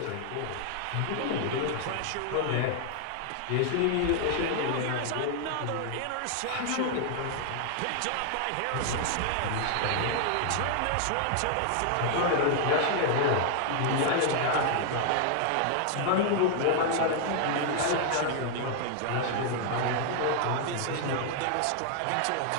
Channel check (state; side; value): different; both; correlation 0.00